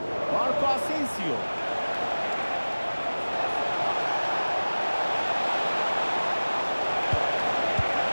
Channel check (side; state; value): both; inverted; correlation -1.00